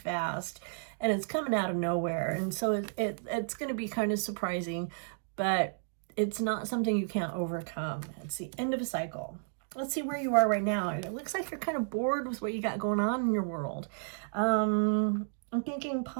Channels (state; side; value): silent; left; digital silence